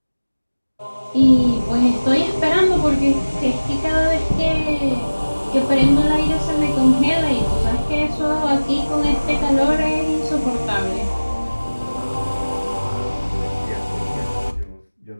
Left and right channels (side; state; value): both; inverted; correlation -1.00